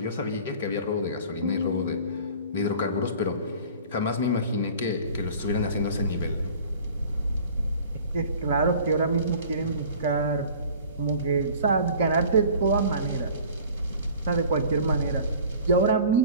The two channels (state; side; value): inverted; both; correlation -0.46